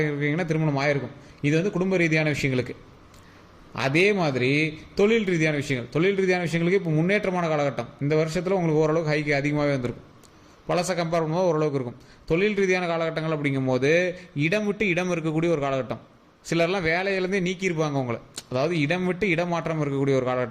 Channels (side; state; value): both; identical; correlation 1.00